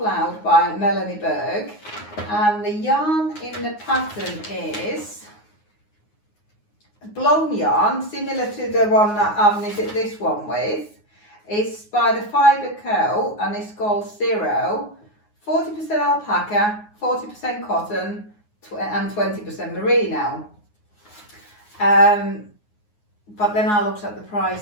by Melanie Berg, and the yarn in the pattern is blown yarn, similar to the one that I've knitted this one with. It's by the Fibre Co, and it's called Zero. 40% alpaca, 40% cotton, and 20% merino. But then I looked at the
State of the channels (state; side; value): late; right; 9.6 ms